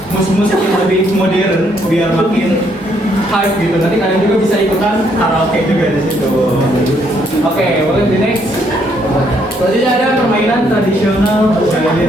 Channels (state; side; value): normal; both; correlation 0.71